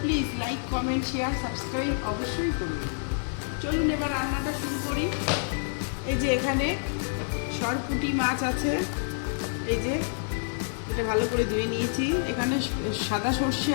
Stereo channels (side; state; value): right; silent; 59 dB below the other